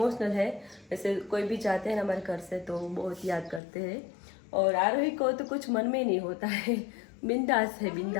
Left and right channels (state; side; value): drops out; right; at 3.6 s